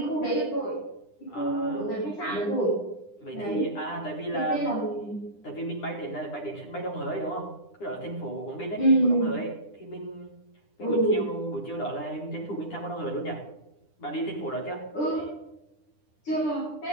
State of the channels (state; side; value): late; right; 9.9 ms